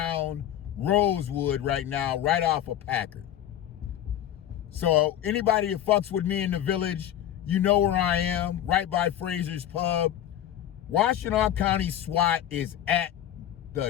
Rosewood right now, right off of Packard. So anybody that fucks with me in the village, you know where I am, right by Fraser's Pub. Washtenaw County SWAT is at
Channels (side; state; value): right; quieter; 11.2 dB